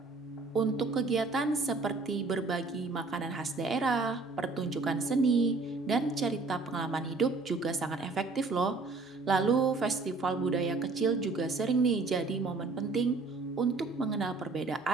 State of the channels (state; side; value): quieter; left; 3.8 dB